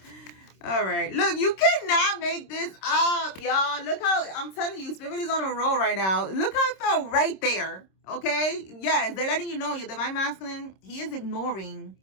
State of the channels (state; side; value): late; right; 26 ms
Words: All right, look, you cannot make this up, y'all. Look how, I'm telling you, Spirit is on a roll right now. Look how it felt right there, okay? Yes, they're letting you know your divine masculine, he is ignoring,